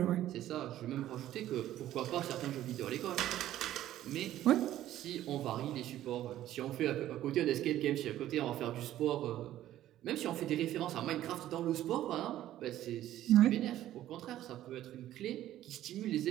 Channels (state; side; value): quieter; left; 13.2 dB